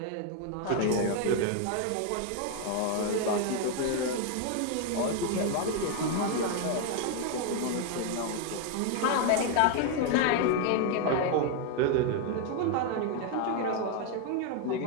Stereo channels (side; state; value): both; different; correlation 0.01